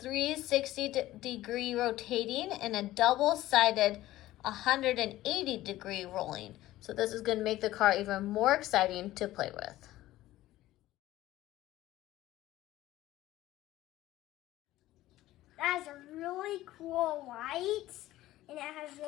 rotating and a double-sided 180-degree rolling. So this is going to make the car even more exciting to play with. That has a really cool light, and it has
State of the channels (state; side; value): quieter; right; 15.7 dB